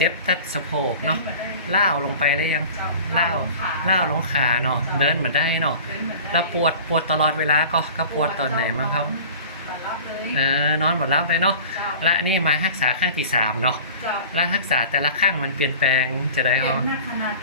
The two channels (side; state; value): both; inverted; correlation -0.41